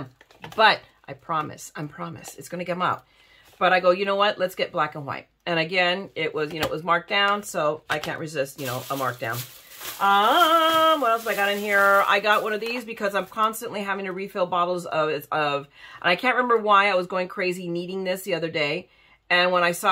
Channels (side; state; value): both; identical; correlation 1.00